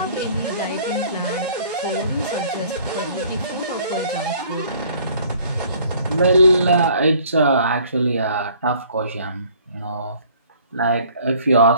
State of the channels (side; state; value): both; inverted; correlation -0.56